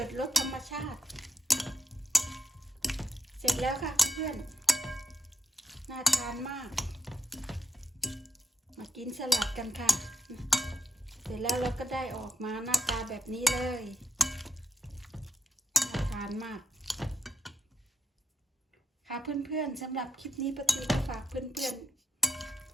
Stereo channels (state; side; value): normal; both; correlation 0.77